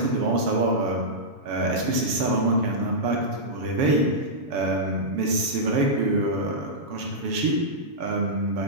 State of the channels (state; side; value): late; left; 7.1 ms